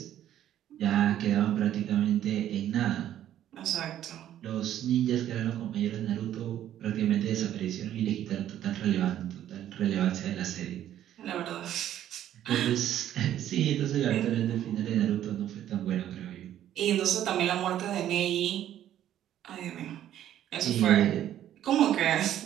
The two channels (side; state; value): left; quieter; 11.6 dB